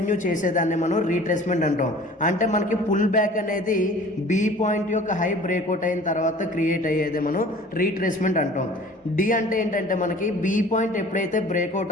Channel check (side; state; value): both; normal; correlation 0.46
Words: చేసేదాన్ని మనం రీట్రేస్మెంట్ అంటాం. అంటే మనకి పుల్ బ్యాక్ అనేది బి పాయింట్ యొక్క హై బ్రేక్అవుట్ అయిన తర్వాత క్రియేట్ అయ్యేది మనం రీట్రేస్మెంట్ అంటాం. డి అంటే ఏంటంటే మనకి బి పాయింట్ ఎప్పుడైతే